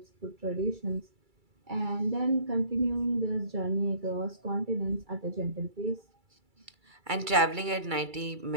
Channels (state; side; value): late; left; 2.3 ms